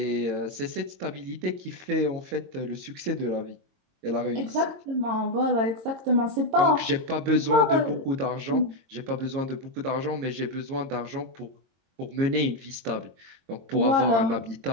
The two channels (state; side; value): late; left; 22 ms